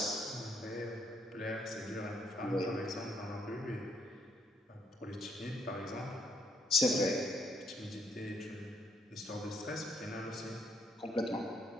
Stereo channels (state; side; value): normal; both; correlation 0.69